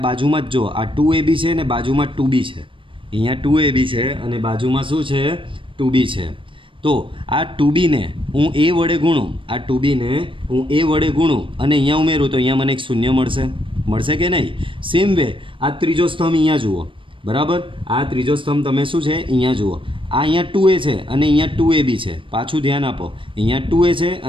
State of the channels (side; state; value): left; late; 0.25 ms